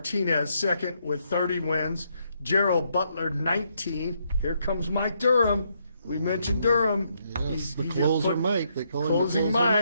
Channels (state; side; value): inverted; both; correlation -0.75